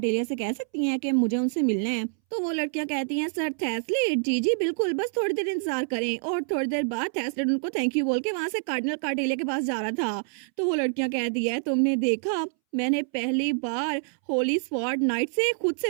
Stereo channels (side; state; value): left; silent; 60 dB below the other